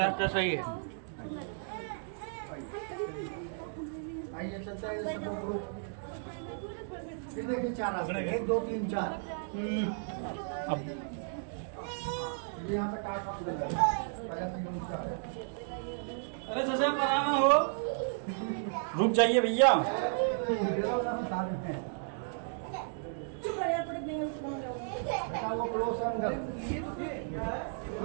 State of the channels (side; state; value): left; silent; digital silence